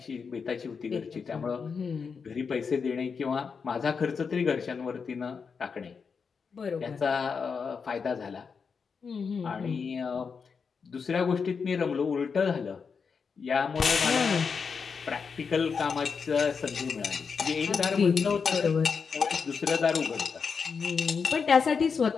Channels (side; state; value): right; quieter; 5.7 dB